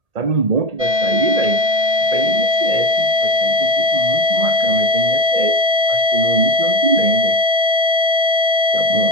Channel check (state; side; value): late; left; 1.8 ms